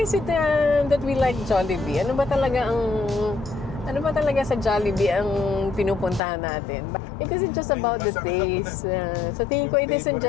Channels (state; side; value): drops out; right; at 6.2 s